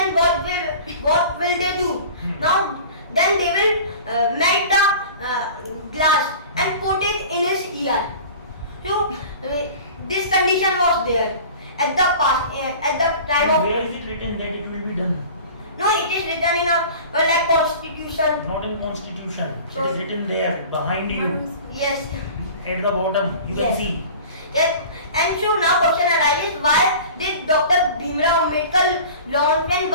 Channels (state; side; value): inverted; both; correlation -0.41